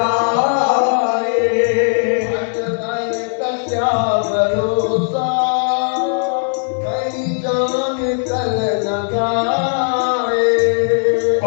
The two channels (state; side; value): silent; right; digital silence